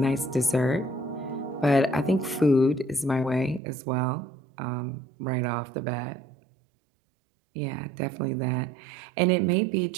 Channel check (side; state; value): left; drops out; at 3.6 s